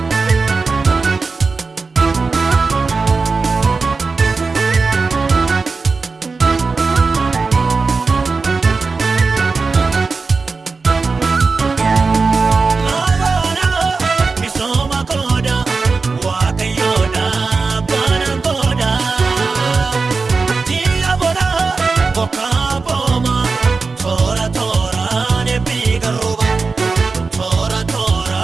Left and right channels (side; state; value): left; quieter; 4.3 dB